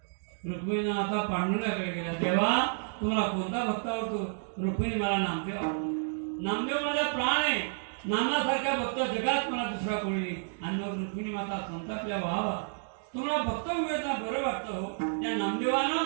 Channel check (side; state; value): left; silent; digital silence